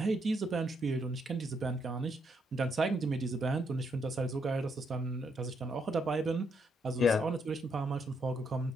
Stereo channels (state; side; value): normal; both; correlation 0.76